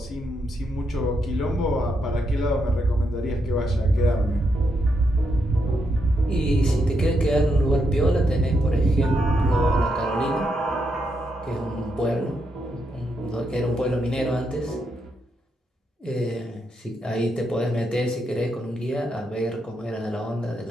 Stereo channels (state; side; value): normal; both; correlation 0.81